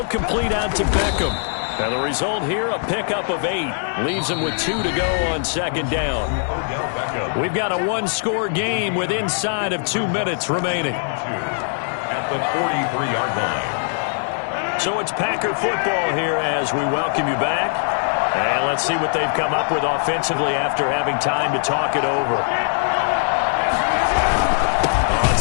complete out to Beckham. And the result here, a pickup of 8. Leaves him with 2 to go on 2nd down. We've got a 1-score game with inside of 2 minutes remaining. At the 43-yard line. So it's Packer football here as we welcome you back. And let's see what they've come up with offensively after having time to talk it over. On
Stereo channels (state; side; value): silent; right; digital silence